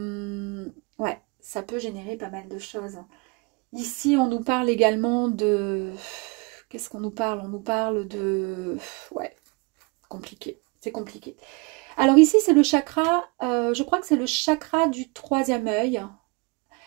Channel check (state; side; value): quieter; left; 29.1 dB